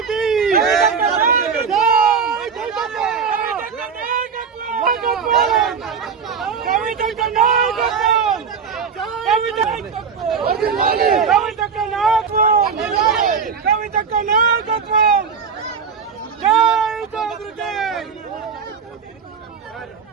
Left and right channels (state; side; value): quieter; left; 6.1 dB